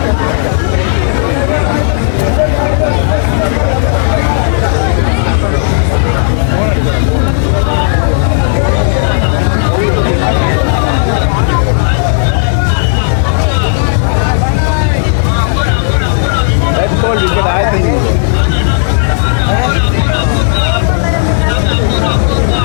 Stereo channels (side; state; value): right; silent; digital silence